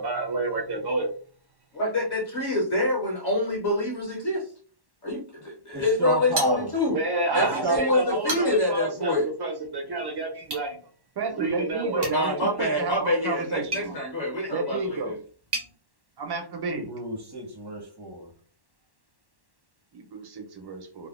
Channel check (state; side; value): late; left; 1.1 ms